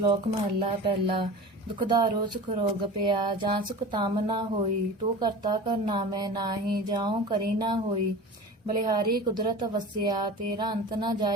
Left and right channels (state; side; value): normal; both; correlation 0.34